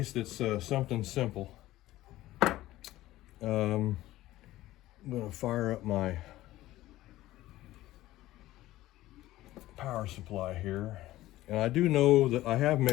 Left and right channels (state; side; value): quieter; right; 16.0 dB